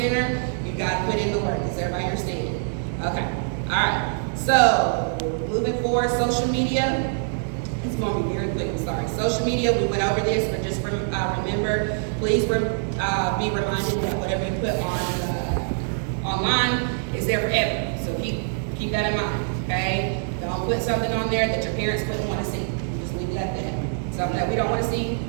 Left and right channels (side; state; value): left; silent; digital silence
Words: you got to put in the work. Does everybody understand? Okay, all right. So, moving forward, social media. It's going to be very quick, I'm sorry. Social media, we went over this, but just remember, please be reminded that whatever you put on online is there forever. So keep that in mind, okay? Don't put something on there that your parents wouldn't want to see. Just leave it at that. Something that we don't want to see,